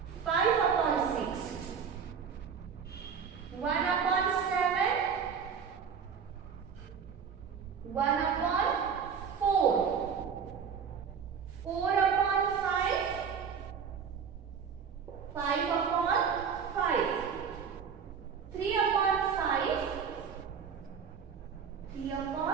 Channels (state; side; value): quieter; left; 6.7 dB